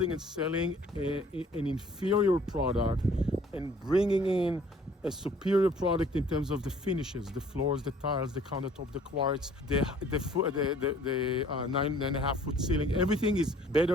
and selling an inferior product and bringing in a superior product in terms of the finishes, the floors, the tiles, the countertop, the quartz, the 9.5 foot ceiling. Everything is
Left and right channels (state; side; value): normal; both; correlation 0.56